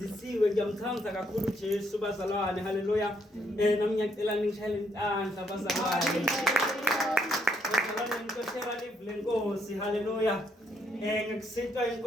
ngiyamthanda kakhulu Jesu bazalwane. Hallelujah. Nami ngiyacela ningishayele intandla bazalwane. Bazalwane ngikoshela live lenkosi. Hallelujah. Ngikusinta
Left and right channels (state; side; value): normal; both; correlation 0.72